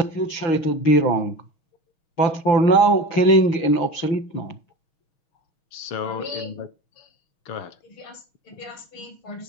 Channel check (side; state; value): right; late; 6.3 ms